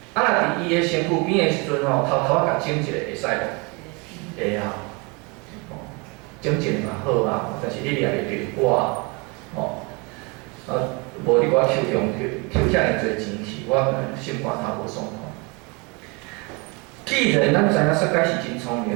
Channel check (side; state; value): left; quieter; 29.8 dB